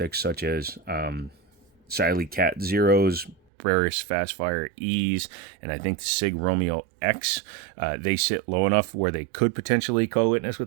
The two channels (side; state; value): left; drops out; at 3.4 s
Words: such as Siley Cat Zeros, Breris Fastfire E's, and I think the Sig Romeo X. They sit low enough where they could potentially co-witness with